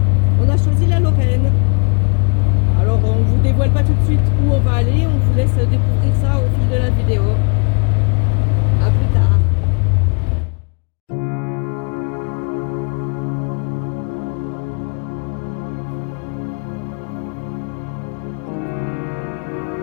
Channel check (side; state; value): right; quieter; 38.4 dB